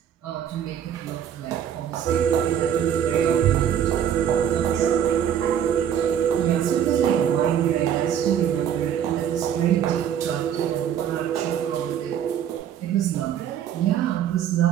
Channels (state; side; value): quieter; left; 9.3 dB